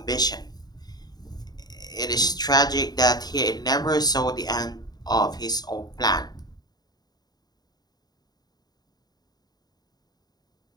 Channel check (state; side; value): late; right; 0.19 ms